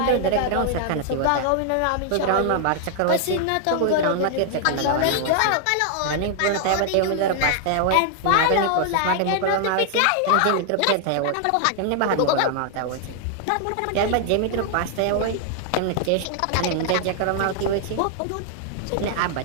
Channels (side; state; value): both; different; correlation 0.00